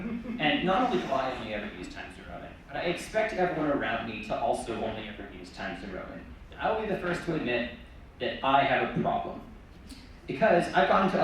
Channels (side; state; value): both; identical; correlation 1.00